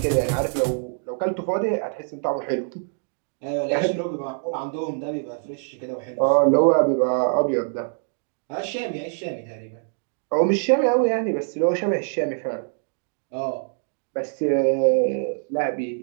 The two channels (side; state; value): left; silent; digital silence